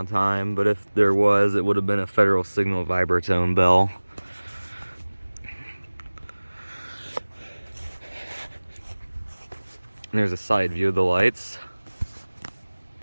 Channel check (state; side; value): inverted; both; correlation -1.00